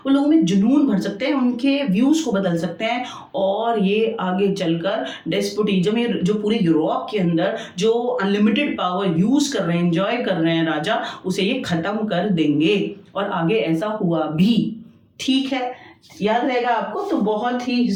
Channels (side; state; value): both; identical; correlation 1.00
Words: वो लोगों में जुनून भर सकते हैं, उनके व्यूज को बदल सकते हैं और ये आगे चलकर डेस्पोटिज्म, ये जो पूरे यूरोप के अंदर जो अनलिमिटेड पावर यूज कर रहे हैं, एंजॉय कर रहे हैं राजा, उसे ये खत्म कर देंगे। और आगे ऐसा हुआ भी, ठीक है, याद रहेगा आपको। तो बहुत ही